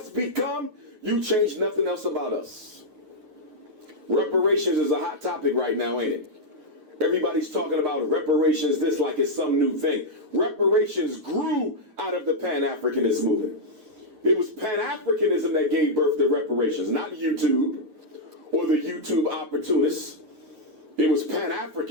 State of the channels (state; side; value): late; left; 9.3 ms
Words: become, you change nothing else about us. Reparations is a hot topic right now, ain't it? Everybody's talking about reparations this like it's some new thing. Reparations grew out of the Pan-Africanist movement. It was Pan-Africanism that gave birth to reparations, not YouTube or the YouTube opportunists. It was